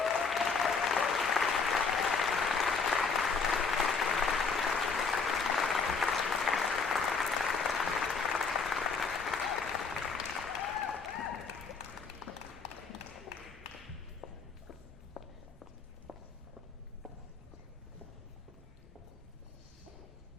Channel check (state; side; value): quieter; right; 4.9 dB